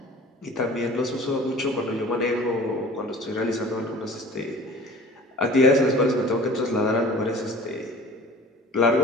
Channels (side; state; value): both; normal; correlation 0.43